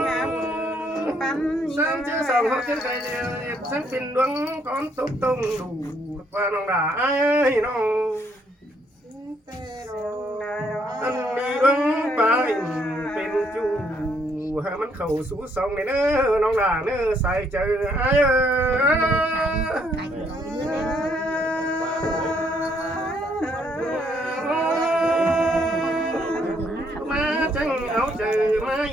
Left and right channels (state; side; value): normal; both; correlation 0.70